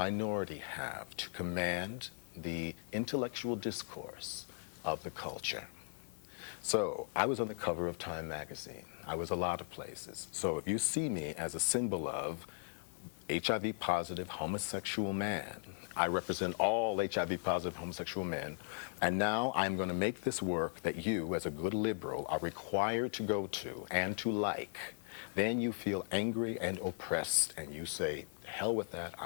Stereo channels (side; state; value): right; silent; digital silence